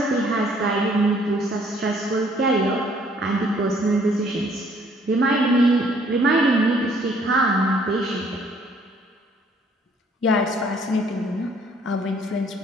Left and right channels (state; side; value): normal; both; correlation 0.62